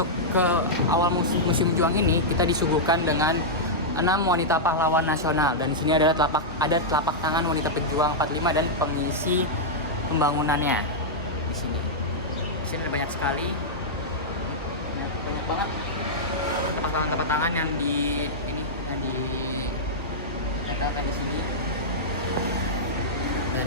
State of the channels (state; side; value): normal; both; correlation -0.08